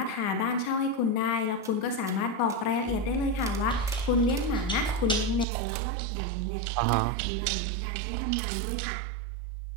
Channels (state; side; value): drops out; left; at 5.5 s